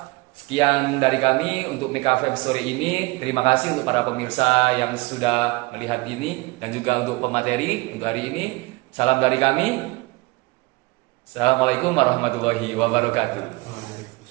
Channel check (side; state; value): left; quieter; 23.8 dB